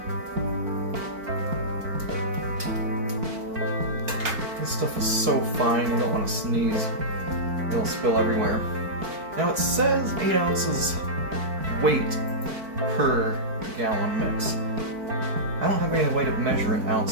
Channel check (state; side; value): late; left; 4.6 ms